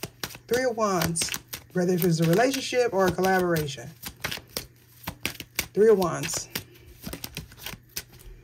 3 of Wands. Whether if it's a relationship or a collaboration. 3 of Wands.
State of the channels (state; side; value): identical; both; correlation 1.00